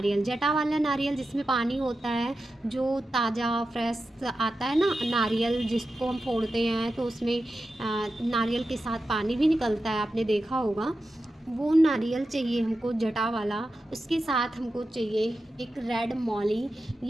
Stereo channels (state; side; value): normal; both; correlation 0.91